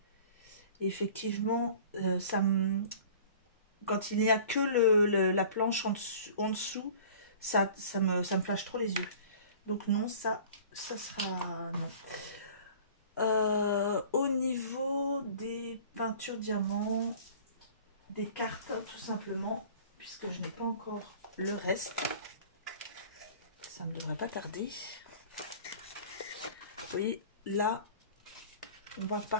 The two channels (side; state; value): both; inverted; correlation -0.46